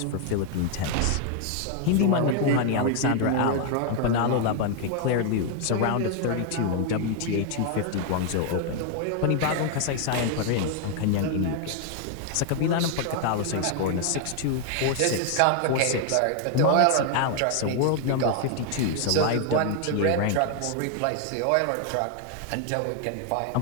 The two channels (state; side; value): different; both; correlation 0.00